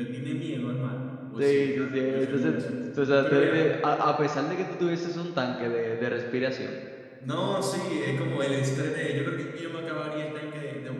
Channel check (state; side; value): identical; both; correlation 1.00